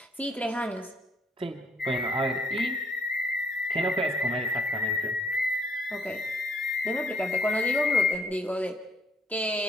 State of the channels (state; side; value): normal; both; correlation 0.66